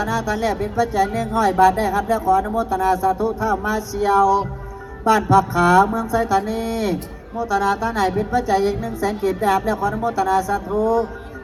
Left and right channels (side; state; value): both; identical; correlation 1.00